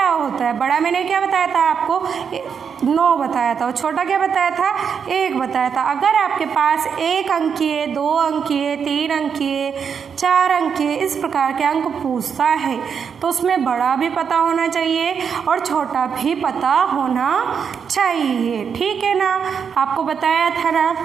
होता है। बड़ा मैंने क्या बताया था आपको? 9 बताया था। और छोटा क्या बताया था? 1 बताया था। अगर आपके पास 1 अंकीय, 2 अंकीय, 3 अंकीय, 4 अंकीय इस प्रकार के अंक पूछता है तो उसमें बड़ा भी पता होना चाहिए और छोटा भी पता होना चाहिए। ठीक है ना? आपको बताया था ना?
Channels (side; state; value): left; quieter; 6.8 dB